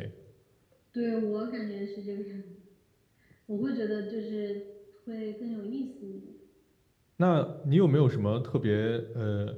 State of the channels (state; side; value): identical; both; correlation 1.00